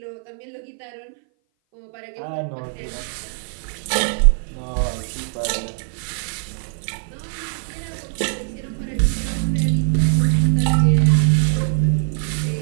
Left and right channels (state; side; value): silent; left; 58 dB below the other